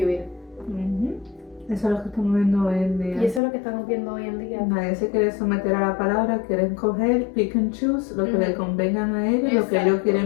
Eso es lo que estamos viendo hoy en día. Y eso es lo que estamos viendo hoy en día. Nadie se quiere someter a la palabra, quieren coger, pick and choose, lo que le convengan a ellos, lo que ellos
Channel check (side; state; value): right; drops out; at 3.4 s